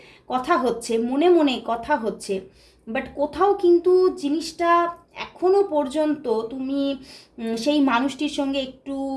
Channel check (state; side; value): identical; both; correlation 1.00